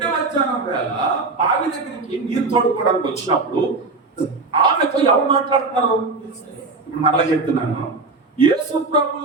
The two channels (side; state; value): left; quieter; 3.7 dB